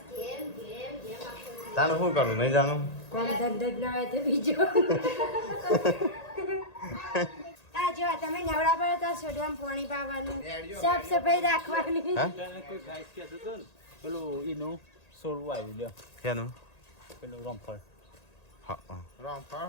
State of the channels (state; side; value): late; right; 1.8 ms